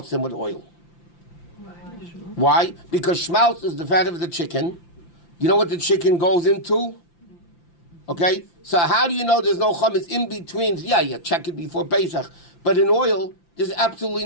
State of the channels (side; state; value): right; late; 5.9 ms